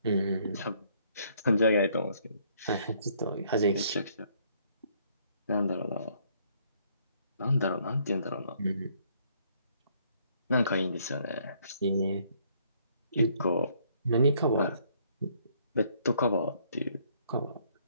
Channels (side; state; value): both; inverted; correlation -0.66